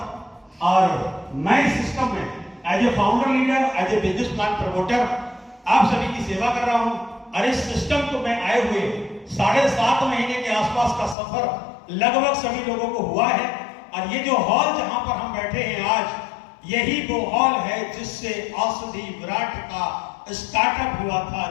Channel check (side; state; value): right; drops out; at 11.2 s